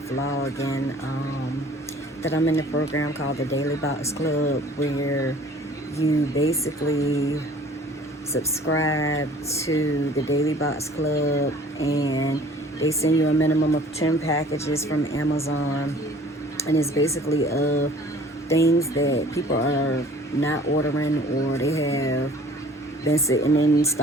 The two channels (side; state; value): both; normal; correlation 0.51